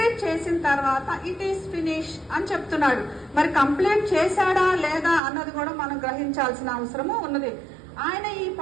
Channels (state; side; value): drops out; left; at 5.2 s